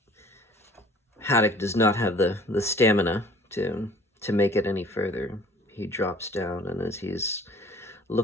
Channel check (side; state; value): both; normal; correlation 0.51